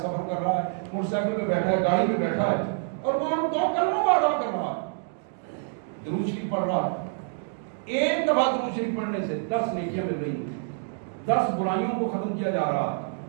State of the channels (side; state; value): left; silent; 60 dB below the other